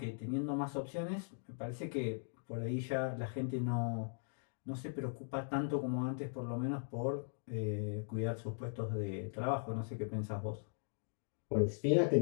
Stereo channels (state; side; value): silent; right; digital silence